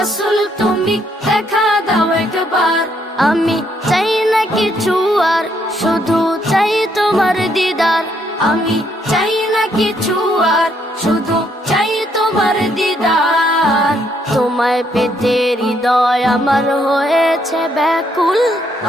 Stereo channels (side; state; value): both; normal; correlation 0.72